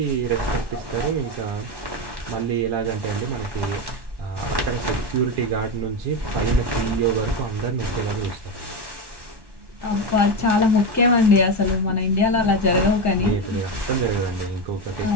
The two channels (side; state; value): left; late; 1.1 ms